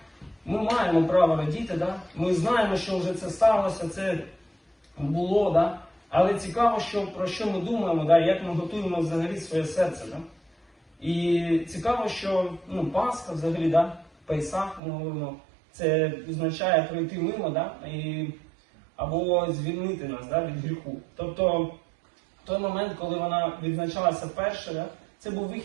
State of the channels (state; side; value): drops out; left; at 14.8 s